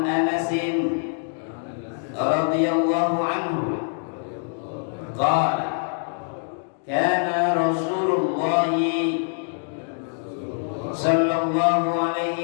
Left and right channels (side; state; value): right; silent; 62 dB below the other